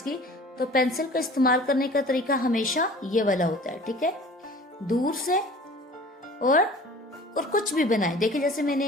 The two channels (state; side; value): normal; both; correlation 0.45